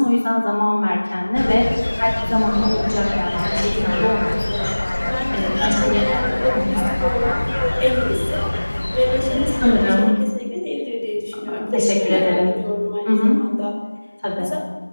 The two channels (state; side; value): inverted; both; correlation -1.00